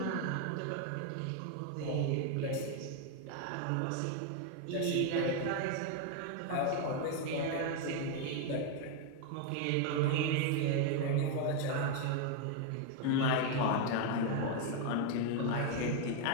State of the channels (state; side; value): different; both; correlation 0.01